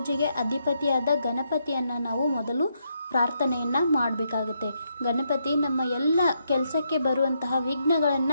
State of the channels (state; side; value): inverted; both; correlation -0.78